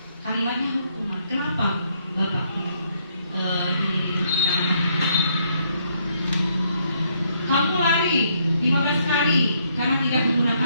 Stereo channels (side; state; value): both; inverted; correlation -0.71